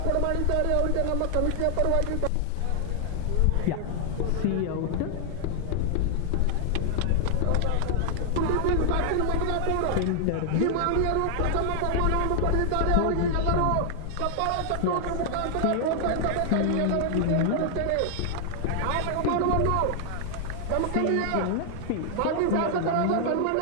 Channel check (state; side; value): different; both; correlation 0.00